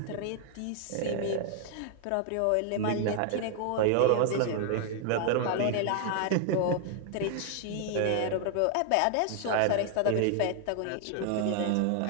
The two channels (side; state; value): both; different; correlation 0.00